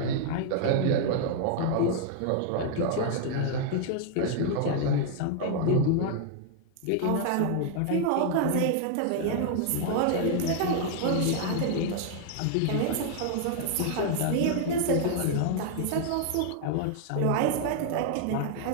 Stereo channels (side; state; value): both; different; correlation 0.00